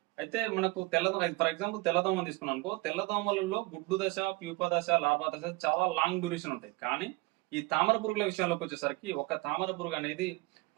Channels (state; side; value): quieter; left; 23.5 dB